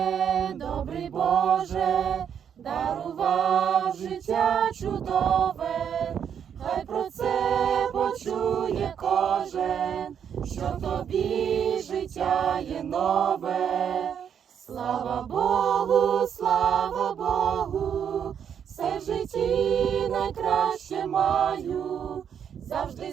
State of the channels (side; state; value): left; quieter; 8.2 dB